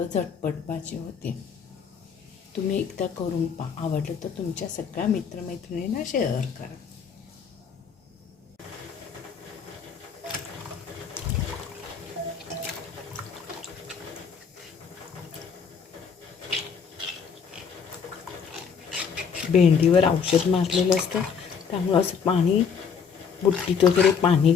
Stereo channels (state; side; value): quieter; right; 6.5 dB